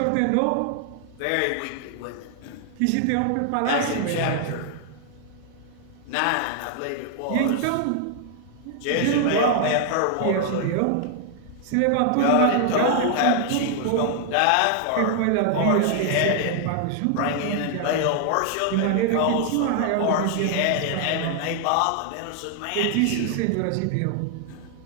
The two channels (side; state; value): both; different; correlation 0.00